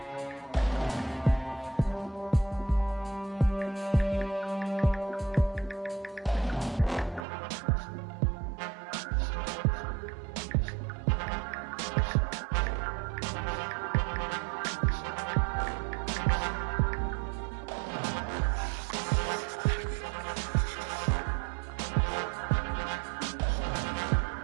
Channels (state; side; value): drops out; left; at 7.2 s